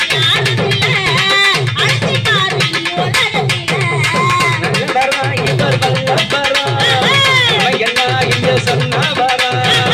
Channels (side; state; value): right; noise; rumble, 28 dB below the sound